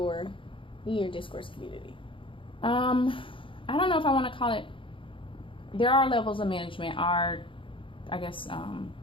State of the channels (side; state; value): right; late; 0.25 ms